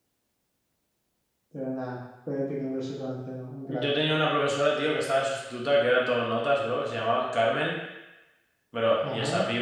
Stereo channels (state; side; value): identical; both; correlation 1.00